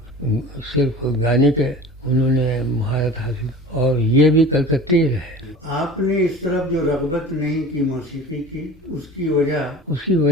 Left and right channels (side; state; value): both; normal; correlation 0.39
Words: صرف گانے کے انہوں نے مہارت حاصل، اور یہ بھی کلکتے رہے. آپ نے اس طرف جو رغبت نہیں کی موسیقی کی، اس کی